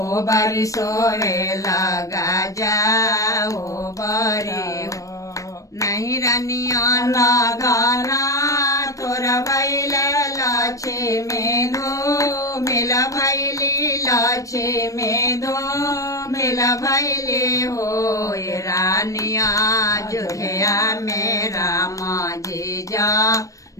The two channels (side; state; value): right; late; 0.16 ms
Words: बरी सोवे लगा जा ओ बरी नहीं रनिया ना गाना तोर भैले लक्ष्मी धो मिल भैली लक्ष्मी धो मिल भैली हो रानिया अयोध्या में राम जी जा